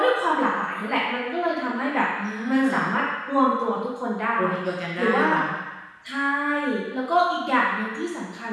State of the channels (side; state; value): both; identical; correlation 1.00